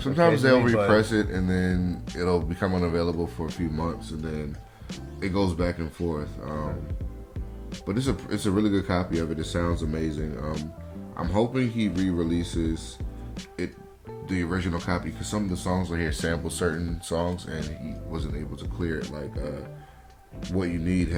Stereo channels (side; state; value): both; identical; correlation 1.00